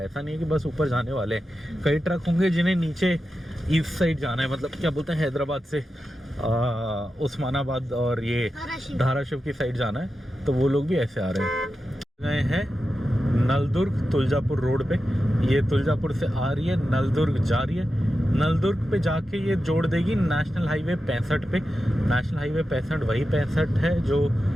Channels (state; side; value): normal; both; correlation 0.91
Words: ऐसा नहीं है कि बस ऊपर जाने वाले हैं, कई ट्रक होंगे जिन्हें नीचे ईस्ट साइड जाना है, मतलब क्या बोलते हैं हैदराबाद से उस्मानाबाद और ये धाराशिव की साइड जाना है, तो वो लोग भी ऐसे आ रहे हैं। गए हैं नलदुर्ग तुलजापुर रोड पे, ये तुलजापुर से आ रही है, नलदुर्ग जा रही है। नलदुर्ग पे जाके ये जोड़ देगी नेशनल हाईवे 65 पे। नेशनल हाईवे 65 वही 65 है जो